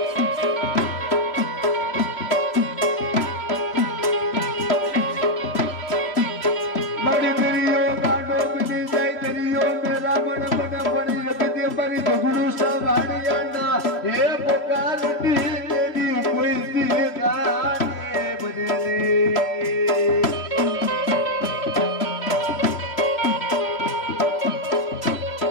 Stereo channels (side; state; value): right; late; 3.0 ms